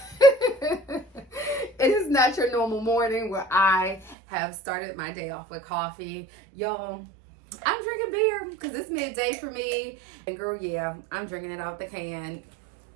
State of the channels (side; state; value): left; drops out; at 4.2 s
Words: is not your normal morning where I have started my day off with coffee. Y'all, I'm drinking beer because it's midday for me. And girl, yeah, I'm drinking it out the can.